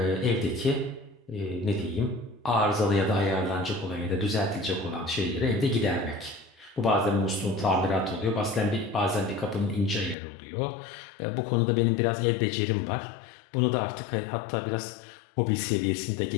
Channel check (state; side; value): drops out; right; at 10.2 s